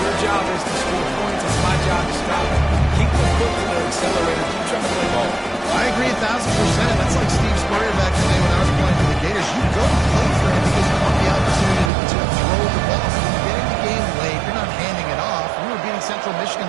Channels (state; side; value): drops out; left; at 11.9 s